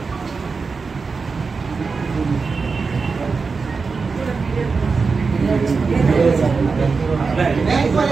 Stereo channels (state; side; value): quieter; left; 4.7 dB